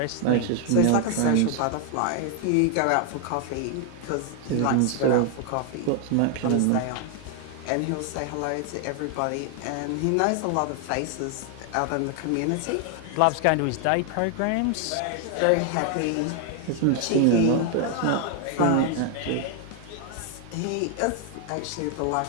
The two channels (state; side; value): different; both; correlation 0.00